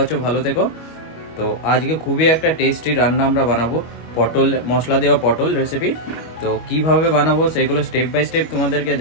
আছো, ভালো থেকো। তো আজকে খুবই একটা টেস্টি রান্না আমরা বানাবো, পটল মশলা দেওয়া পটল রেসিপি। তো কিভাবে বানাবো সেগুলো স্টেপ বাই স্টেপ তোমাদেরকে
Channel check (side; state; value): right; late; 25 ms